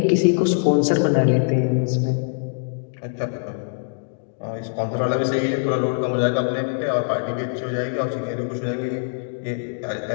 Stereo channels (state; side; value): silent; right; digital silence